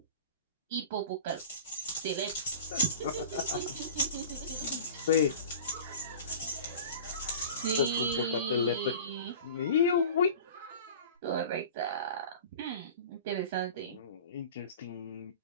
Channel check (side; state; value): both; inverted; correlation -0.38